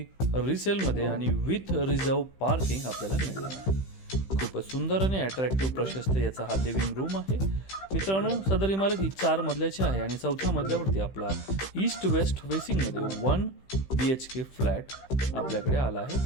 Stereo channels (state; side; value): late; right; 15 ms